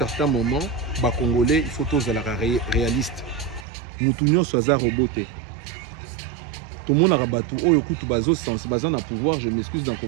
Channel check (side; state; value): left; drops out; at 3.7 s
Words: moment, les Congolais, il faut tous la réaliste. Moutounio soit roboté. Tout le monde a rabattu. Oh, écoute, bazo sens, bazan a pouvoir. Je m'excuse dans le